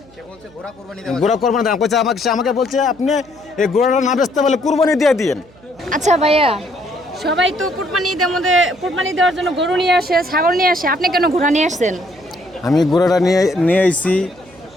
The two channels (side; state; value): right; noise; hum, 26 dB below the sound